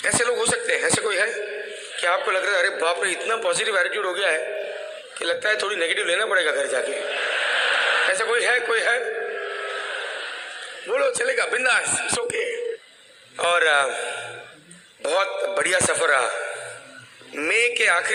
ऐसे लोग हो सकते हैं, ऐसे कोई है कि आपको लग रहा है अरे बाप रे इतना पॉजिटिव एटीट्यूड हो गया है कि लगता है थोड़ी नेगेटिव लेना पड़ेगा घर जाके? ऐसा कोई है? कोई है? बोलो, चलेगा, बिंदास, इट्स ओके। और बहुत बढ़िया सफ़र रहा। मई के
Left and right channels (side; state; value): both; identical; correlation 1.00